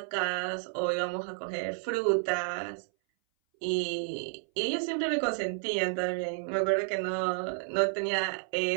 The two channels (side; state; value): left; silent; 57 dB below the other